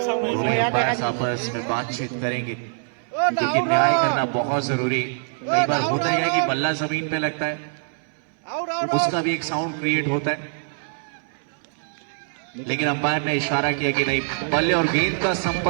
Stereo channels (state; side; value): silent; left; digital silence